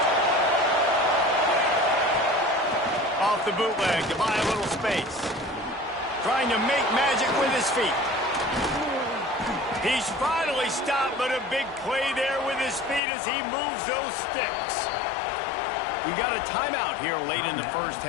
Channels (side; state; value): right; drops out; at 13.0 s